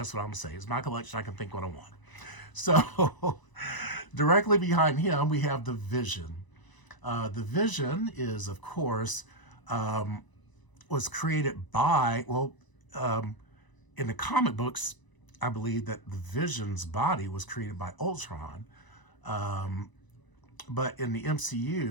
what I'm saying. It's my collection. I can think what I want. So directly behind him, we have the Vision. The Vision is, of course, was created by, in the comic books, I believe that the Vision's body was created by Ultron. But in the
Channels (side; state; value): right; late; 1.0 ms